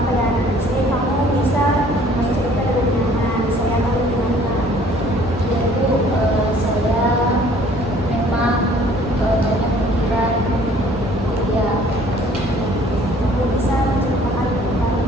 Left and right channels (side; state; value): both; normal; correlation 0.56